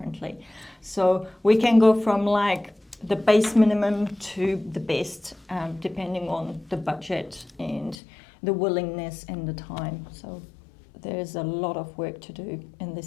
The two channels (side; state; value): right; drops out; at 8.0 s